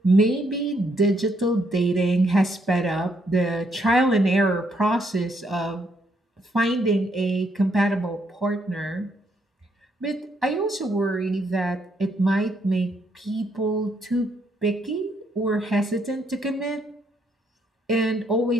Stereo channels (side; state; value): both; normal; correlation 0.73